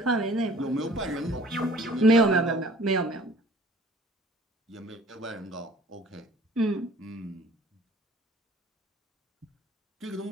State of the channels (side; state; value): both; normal; correlation 0.52